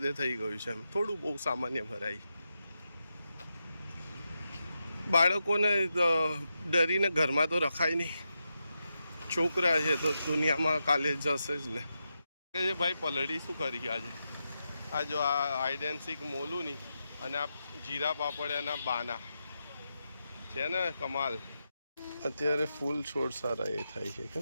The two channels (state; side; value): inverted; both; correlation -0.87